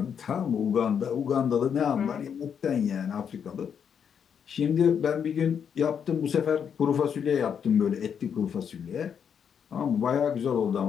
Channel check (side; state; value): right; quieter; 7.6 dB